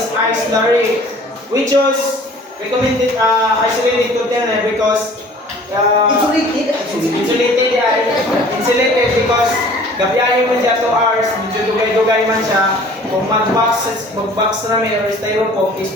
ice slurry. We chose recommended isolated container because insulated because gabiyahe mo siya 2 hours, medyo dugay-dugay man siya. Kung mag-box rami or styrofoam is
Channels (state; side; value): normal; both; correlation 0.50